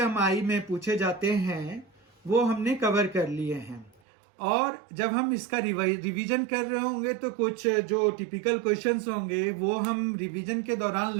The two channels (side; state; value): left; drops out; at 3.9 s